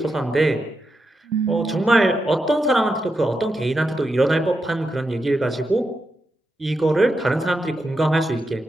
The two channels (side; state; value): both; normal; correlation 0.86